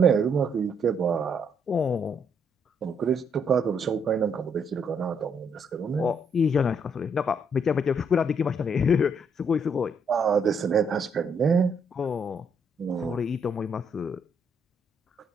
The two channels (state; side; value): normal; both; correlation 0.72